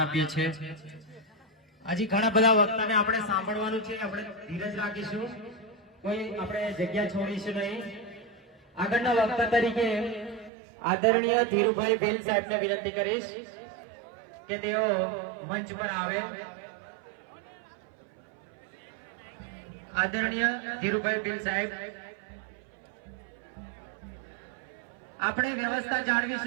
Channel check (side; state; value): left; drops out; at 10.5 s